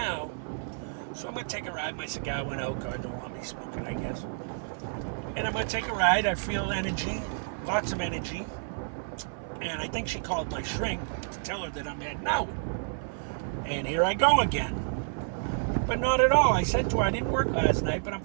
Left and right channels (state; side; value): silent; left; 58 dB below the other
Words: So I'm going to take a ride. My cigar went out. God don't want me smoking, I guess. And I'm going to take a ride. I feel energy, lots of energy. And I think she called my shrink to tell her that I'm heading out. And here I go again. But not at all. I said to her I didn't work last night, but I'm